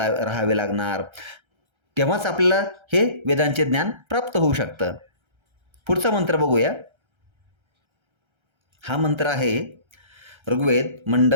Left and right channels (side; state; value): left; late; 1.3 ms